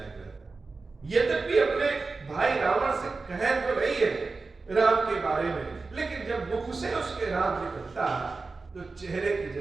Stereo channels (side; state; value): left; quieter; 4.0 dB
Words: रहता है। यद्यपि अपने भाई रावण से कह तो रही है राम के बारे में, लेकिन जब मुख से उसके राम निकलता तो चेहरे की